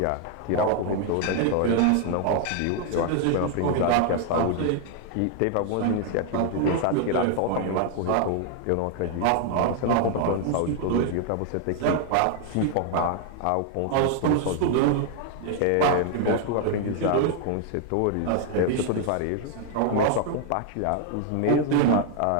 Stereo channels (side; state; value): both; different; correlation 0.00